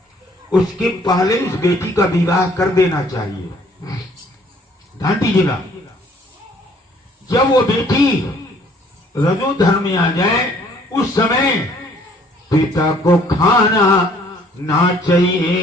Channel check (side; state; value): both; normal; correlation 0.60